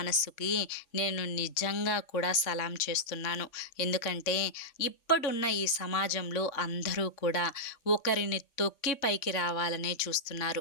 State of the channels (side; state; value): right; late; 3.6 ms